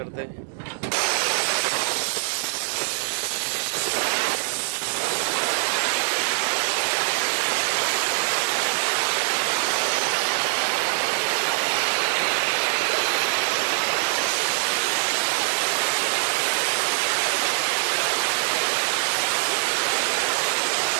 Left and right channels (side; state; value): left; silent; digital silence